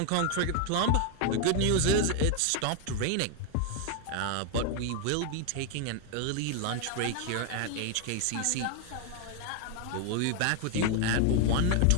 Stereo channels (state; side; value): different; both; correlation 0.00